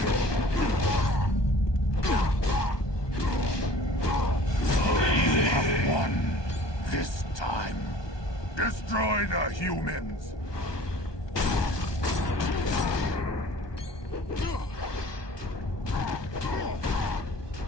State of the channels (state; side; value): late; right; 1.2 ms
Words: This time, destroy the humans!